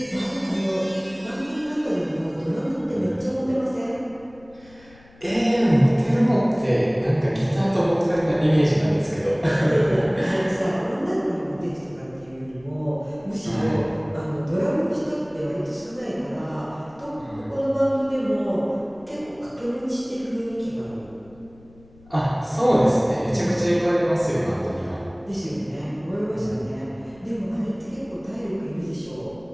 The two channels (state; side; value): noise; left; rumble, 26 dB below the sound